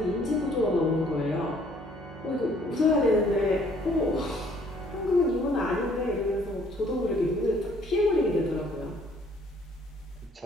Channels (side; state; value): both; normal; correlation 0.61